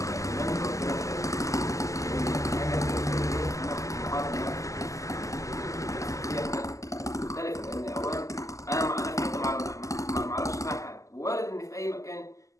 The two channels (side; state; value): right; late; 0.16 ms